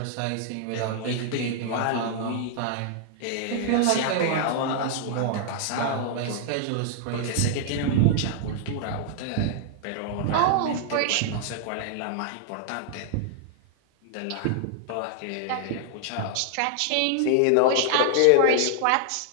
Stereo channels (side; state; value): both; different; correlation -0.01